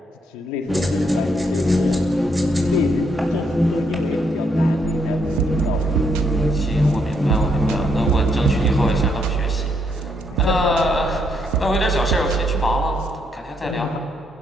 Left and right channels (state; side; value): normal; both; correlation 0.74